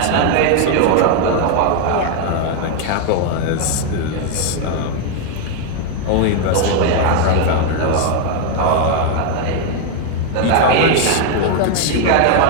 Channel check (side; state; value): both; different; correlation 0.00